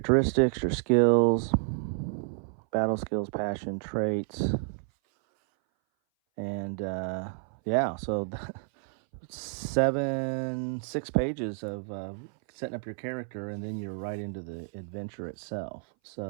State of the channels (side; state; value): left; silent; 58 dB below the other